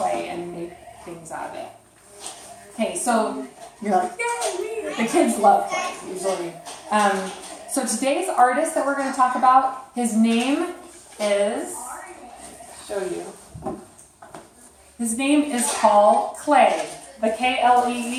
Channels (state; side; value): identical; both; correlation 1.00